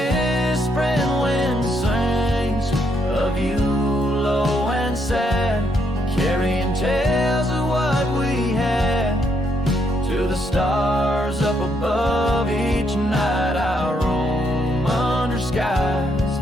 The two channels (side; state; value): both; normal; correlation 0.75